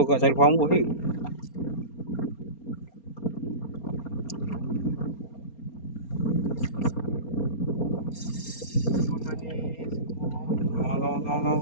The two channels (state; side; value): late; right; 4.3 ms